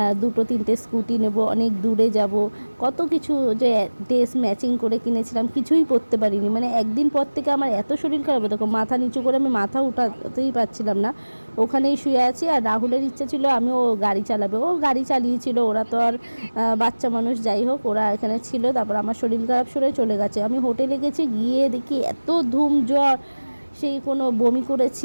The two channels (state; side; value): inverted; both; correlation -1.00